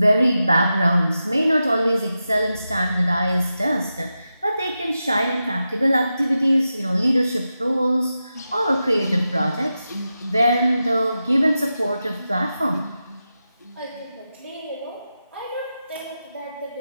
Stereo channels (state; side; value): inverted; both; correlation -0.91